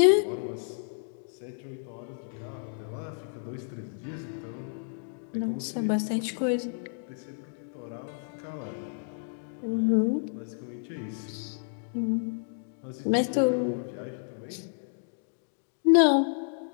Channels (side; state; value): right; silent; digital silence